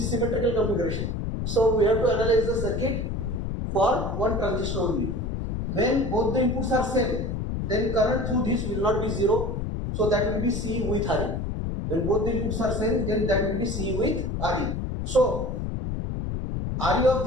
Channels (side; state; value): left; noise; rumble, 3 dB below the sound